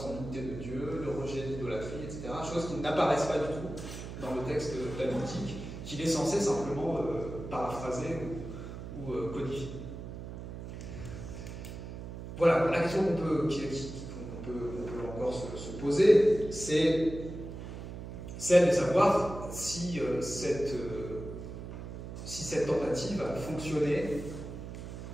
en l'unité de Dieu, le rejet de l'idolâtrie, etc. Choses qui n'apparaissent pas du tout dans le texte talmudique, qu'il est censé simplement paraphraser ou codifier. Voilà, la question qu'on peut encore se poser, c'est celle de savoir si cette tentative a fonctionné,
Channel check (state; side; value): noise; right; hum, 9 dB below the sound